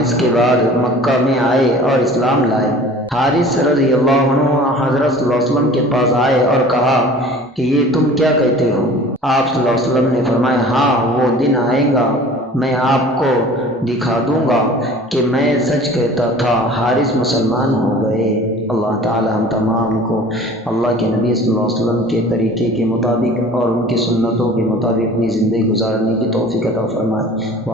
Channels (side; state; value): both; normal; correlation 0.44